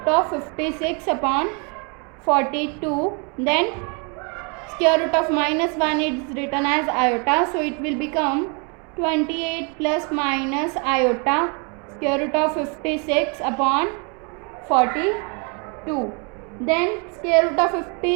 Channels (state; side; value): quieter; left; 34.9 dB